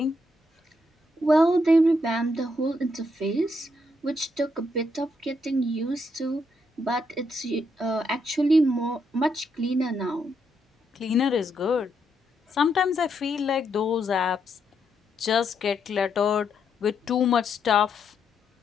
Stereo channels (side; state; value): both; normal; correlation 0.78